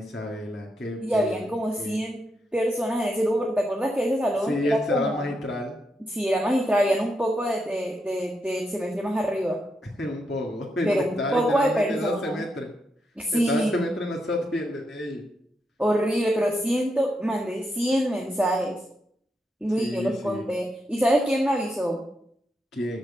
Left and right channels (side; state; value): both; normal; correlation 0.83